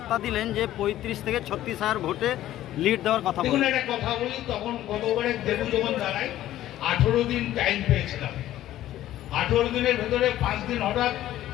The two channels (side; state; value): right; quieter; 13.5 dB